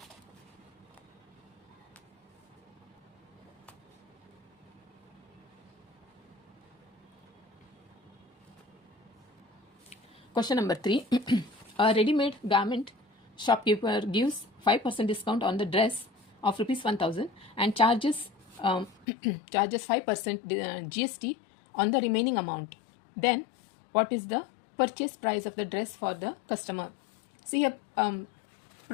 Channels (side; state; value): right; drops out; at 19.1 s